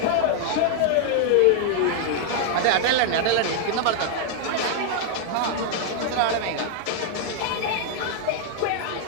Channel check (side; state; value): both; different; correlation 0.00